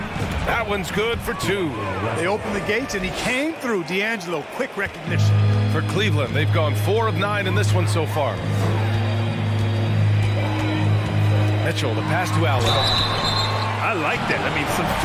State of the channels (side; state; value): both; identical; correlation 1.00